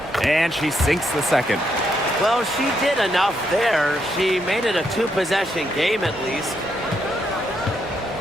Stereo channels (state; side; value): normal; both; correlation 0.77